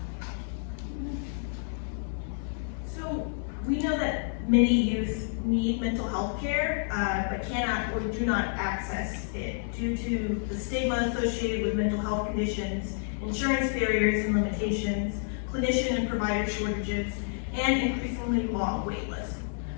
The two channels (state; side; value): silent; right; 58 dB below the other